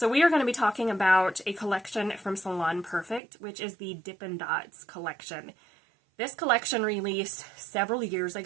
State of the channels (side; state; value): left; drops out; at 3.2 s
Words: we are going to be talking about a collection from Salon Perfect, which is the Dippin' Dots collection. This collection released several years